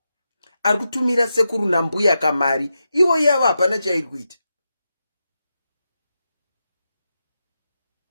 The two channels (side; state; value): both; inverted; correlation -0.88